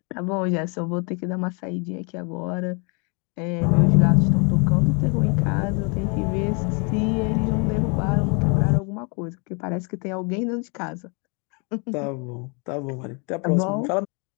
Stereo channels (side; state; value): right; quieter; 34.3 dB